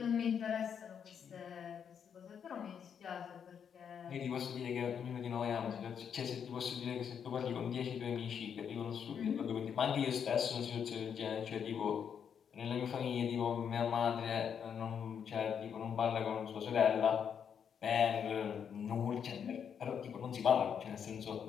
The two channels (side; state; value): right; quieter; 7.7 dB